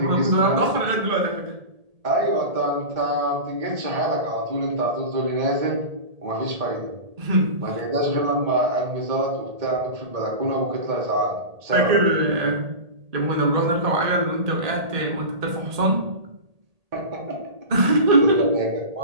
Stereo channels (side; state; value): left; late; 1.8 ms